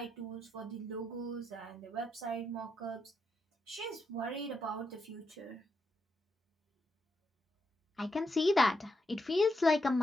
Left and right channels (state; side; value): normal; both; correlation 0.82